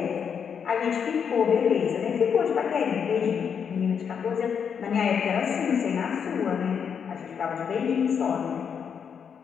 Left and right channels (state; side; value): quieter; right; 7.2 dB